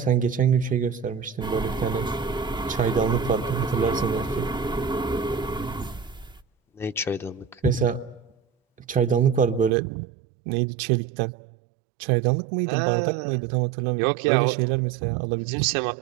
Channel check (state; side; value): drops out; left; at 9.7 s